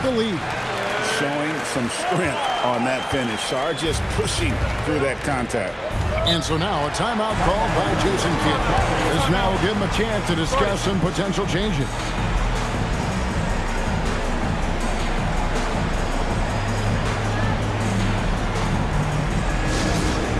the lead. Showing some strength on that finish. Sarr just pushing through that contact. And so now a timeout called by Jason Kidd. This now will give him a chance to discuss some potential changes.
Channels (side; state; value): both; identical; correlation 1.00